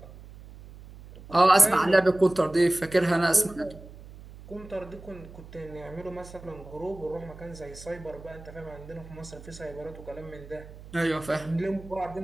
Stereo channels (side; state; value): right; noise; hum, 17 dB below the sound